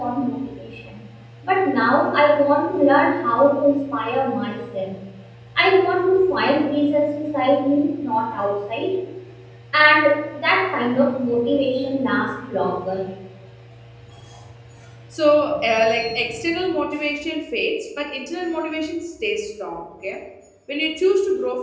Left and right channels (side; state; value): both; identical; correlation 1.00